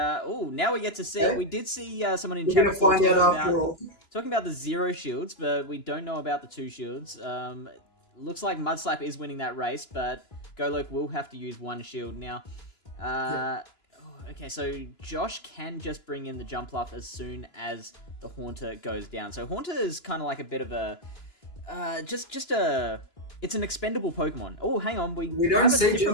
we get to see. We did see someone in chat before talking about the 0 shields, but we don't know about the 2 shields. Looks like Mudslap is winning that race, but Golok will have to use 1 shield now. Okay, so Josh can just bring in the Jumpluff as soon as the Haunter goes down. So Haunter is kind of like a bit of a it's an expendable Pokemon. Oh, hang on, we don't have a see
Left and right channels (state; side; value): late; right; 2.9 ms